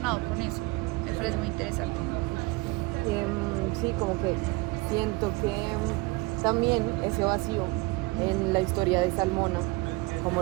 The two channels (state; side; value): quieter; left; 23.4 dB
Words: con eso, me parece muy interesante. Sí, como que siento que también ese vacío en la historia de Salmona, como